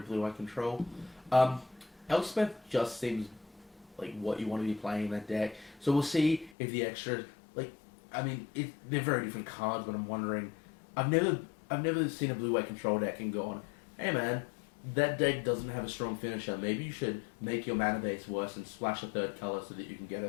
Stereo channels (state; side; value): drops out; right; at 6.5 s